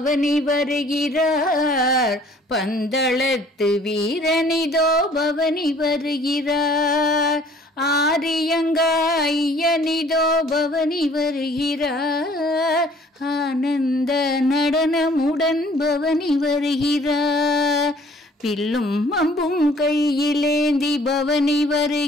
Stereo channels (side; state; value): both; normal; correlation 0.56